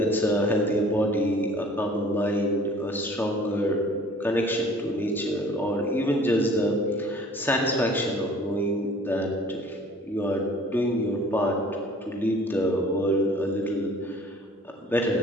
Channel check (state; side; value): normal; both; correlation 0.50